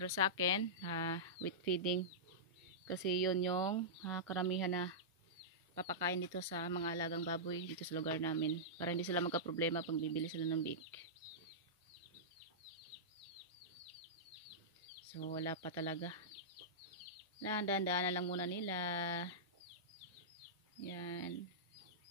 sa akin, wheat feeding. Kasi yun yung karamihan na papakain dito sa mga alagang baboy dito sa lugar namin. Para hindi sila magka-problema pag bibili sila ng bake. So wala pa talaga. Dahan-dahan na lang muna nila. Yan.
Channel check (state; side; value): normal; both; correlation -0.14